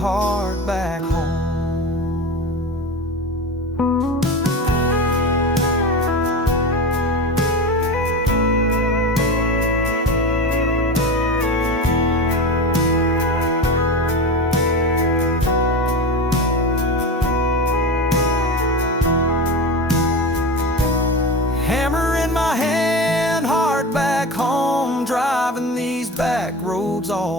back home. Driving these back roads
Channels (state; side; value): normal; both; correlation 0.26